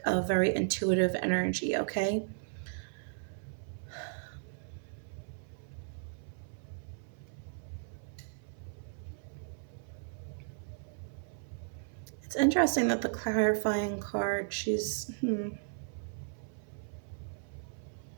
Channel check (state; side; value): silent; left; 54 dB below the other